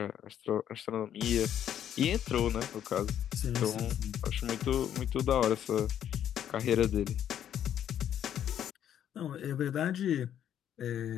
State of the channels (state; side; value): quieter; right; 10.1 dB